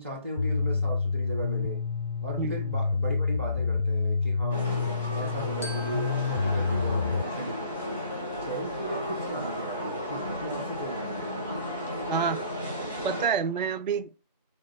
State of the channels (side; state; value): both; inverted; correlation -0.58